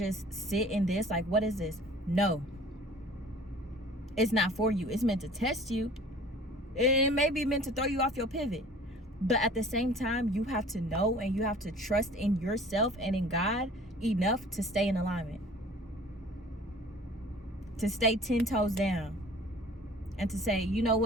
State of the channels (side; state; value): both; normal; correlation 0.47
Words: sit in this? Like, what is this? No, it's not for you. It's meant to test you. It may be meant to throw you off your pivot. But at the same time, you have to know and you have to trust in yourself and in God enough to stay in alignment, to stay 10 toes down, and to say, you know